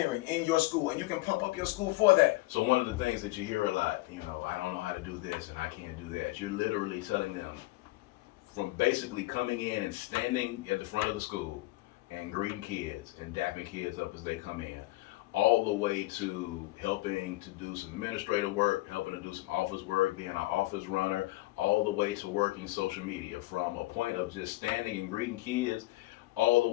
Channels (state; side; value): quieter; right; 19.5 dB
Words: in your school, and you can pump up your school for that. So one of the things that you hear a lot, I don't know how to do this and I can't do that. You're literally telling them, from basically coming in and standing at the front of the school and greeting kids and dapping kids up as they come in, all the way to helping to do some administrative work, helping to do some office work, being an office runner, all the way to working social media, from a point of just standing and greeting kids all the